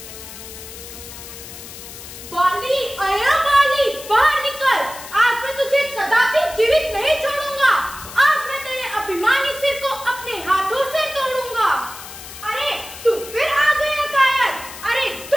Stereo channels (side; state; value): left; noise; hiss, 13 dB below the sound